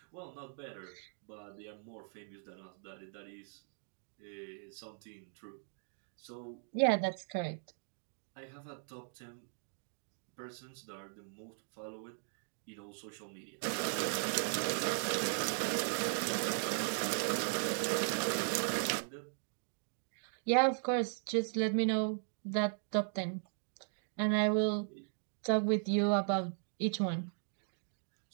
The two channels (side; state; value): left; silent; digital silence